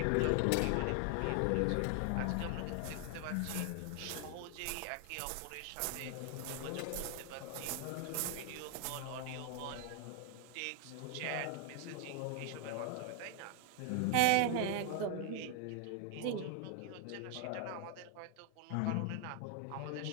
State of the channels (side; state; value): both; different; correlation 0.00